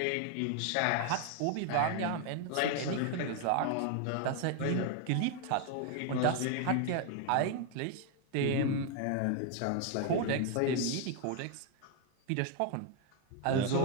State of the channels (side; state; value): both; different; correlation 0.01